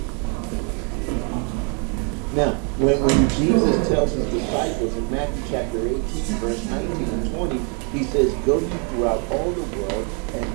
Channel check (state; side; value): quieter; left; 37.6 dB